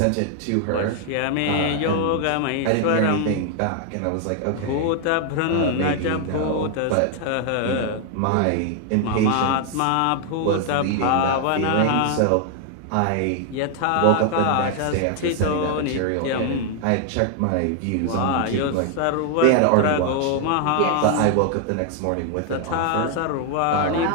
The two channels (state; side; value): different; both; correlation 0.00